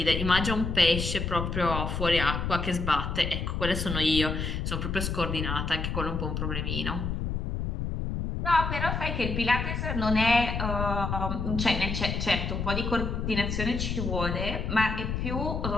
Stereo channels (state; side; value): noise; left; rumble, 2 dB below the sound